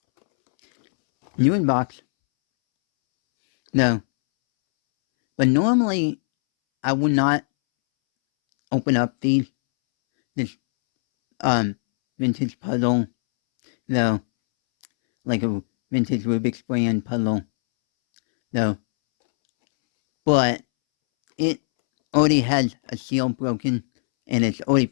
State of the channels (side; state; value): right; silent; 65 dB below the other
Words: New in box. No, but normally I would not open up this vintage puzzle, though, like a vintage Rubik's brand puzzle, though. But it already has a seal broken, and it's already